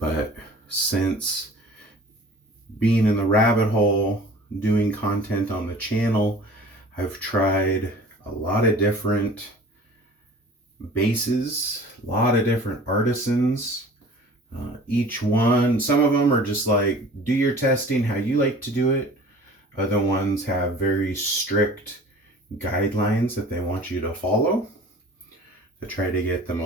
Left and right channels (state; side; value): normal; both; correlation 0.45